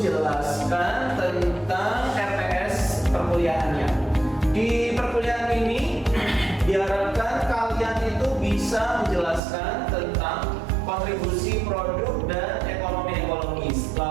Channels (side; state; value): left; drops out; at 9.4 s